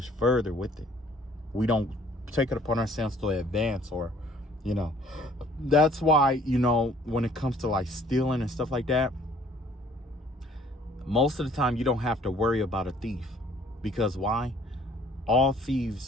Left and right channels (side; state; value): both; normal; correlation 0.57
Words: further with it. We don't take it upon ourselves to advance, or, that's why, when it comes to like stealing and stuff like that, most of the time you don't have to worry about a thief. Because why? All